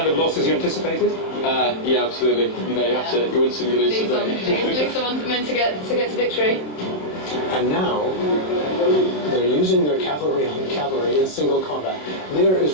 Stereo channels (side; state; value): right; late; 27 ms